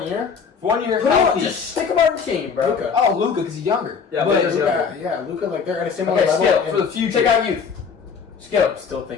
year? For 1 year, Put him on, healthy. just stick him on your team, bro. Luka. Oh, Luka, because he's younger. Yeah, but Luka's younger. Yeah, Luka, like they're at a similar Okay, level. skill and for the future. Take out youth. Skill. I'm still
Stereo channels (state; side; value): quieter; right; 6.0 dB